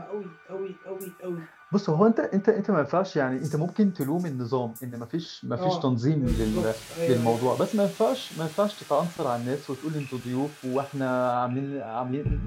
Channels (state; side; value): identical; both; correlation 1.00